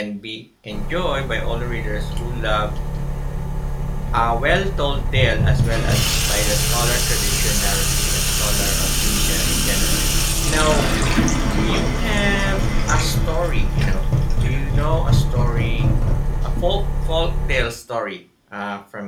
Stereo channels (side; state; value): both; identical; correlation 1.00